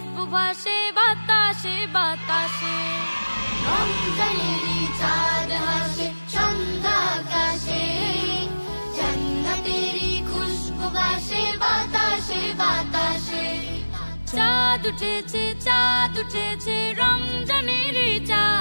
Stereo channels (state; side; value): inverted; both; correlation -1.00